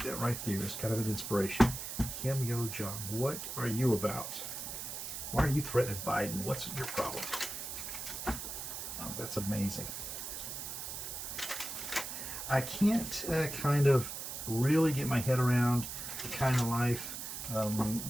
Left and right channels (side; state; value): right; noise; hiss, 6 dB below the sound